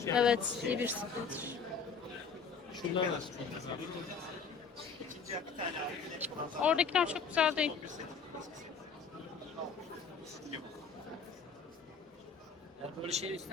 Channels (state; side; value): quieter; right; 5.7 dB